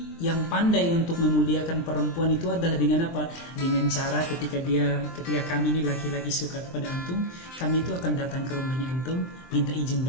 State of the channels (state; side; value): late; right; 23 ms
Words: yang pandai untuk memuliakan perempuan itu adalah dengan apa? Dengan cara ketika kami ini laki-laki suka kepada antum, kami itu akan datang ke rumahnya antum, minta izin